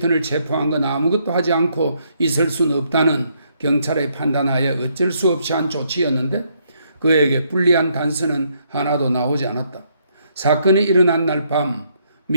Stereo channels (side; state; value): both; inverted; correlation -0.72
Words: 체포한 건 아무것도 하지 않고 있을 수는 없다는 경찰의 판단하에 어쩔 수 없이 한 조치였는데 그에게 불리한 단서는 하나도 나오지 않았다. 사건이 일어난 날 밤